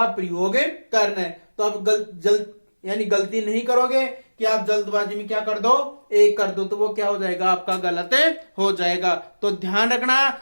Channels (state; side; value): inverted; both; correlation -1.00